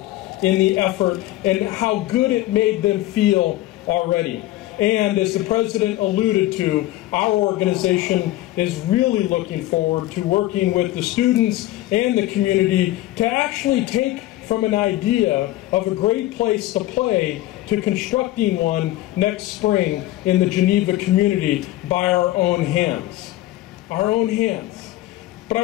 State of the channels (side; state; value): right; quieter; 16.0 dB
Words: in the effort and how good it made them feel already. And as the president alluded to, our organization is really looking forward to working with the students and the community to actually take from an idea of a great place to play to constructing one next spring in the Geneva community by our own hands. Our own hands. But